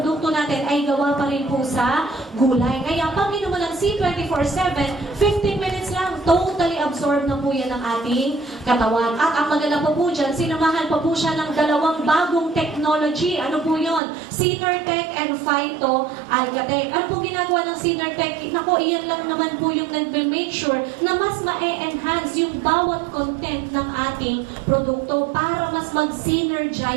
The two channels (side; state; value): left; drops out; at 14.0 s